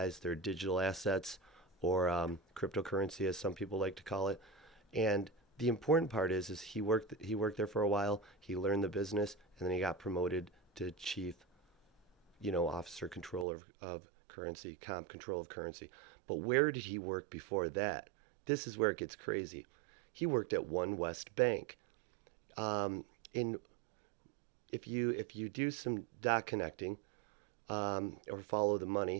their digital assets or cryptocurrency, as some people like to call it. And the important part is he worked there for a while. He learned the business, and then he got promoted to chief, officer controller of currency, comp control of currency. But where did he work before that? This is where it gets crazy. He worked at One West Bank. In if you do some dot connecting or follow the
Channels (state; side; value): drops out; left; at 13.5 s